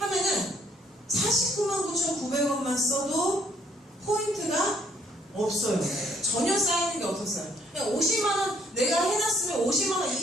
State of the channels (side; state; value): both; normal; correlation 0.65